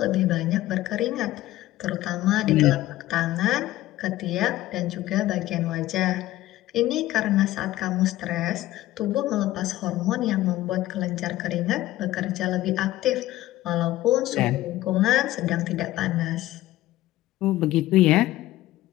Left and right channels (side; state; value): right; quieter; 15.7 dB